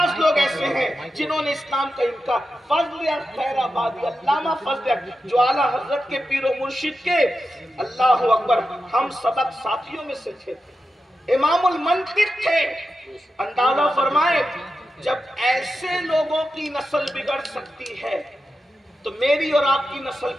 لوگ ایسے ہیں جنہوں نے اسلام کا انکار. فضل خیر آبادی, علامہ فضل جو اعلیٰ حضرت کے پیر و مرشد کے اللہ اکبر ہم سبق ساتھیوں میں سے تھے, امام المنطق تھے. اندازہ فرمائے جب ایسے لوگوں کی نسل بگڑ سکتی ہے تو میری اور آپ کی نسل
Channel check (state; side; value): normal; both; correlation 0.90